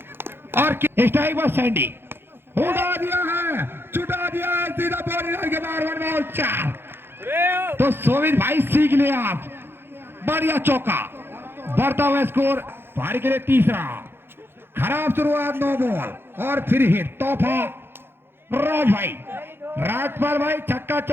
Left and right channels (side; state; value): left; late; 0.11 ms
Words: और स्ट्राइक पर सैंडी उड़ा दिया है, चुटा दिया है, सीधा बॉडी लाइन के बाहर, 1 बॉल 4। तो सोविन भाई सीख लिया आप, बढ़िया चौका। बढ़ता हुआ स्कोर भारी के लिए तीसरा। खराब शुरुआत, 9 बॉल और फिर हिट। तोहफा राज भाई, राजपाल भाई छक्का